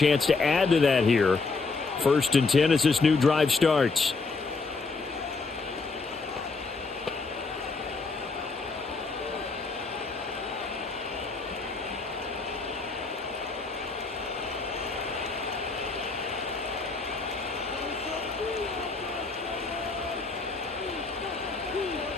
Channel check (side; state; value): right; quieter; 4.1 dB